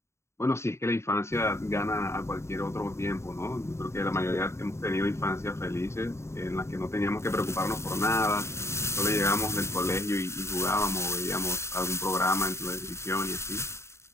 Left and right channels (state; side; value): late; right; 0.13 ms